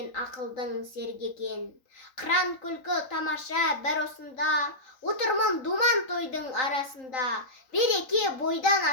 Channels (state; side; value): late; right; 3.8 ms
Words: ақылдың серге екен. Қыран күлкі тамаша бір осында, отырмын думан тойдың арасында. Береке бойдан